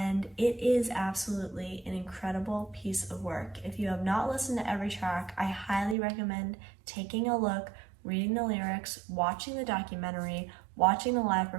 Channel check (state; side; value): drops out; left; at 6.0 s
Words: it is absolutely an incredible piece of work. If you have not listened to every track, I highly recommend taking a look, reading the lyrics, watching the documentary, watching the live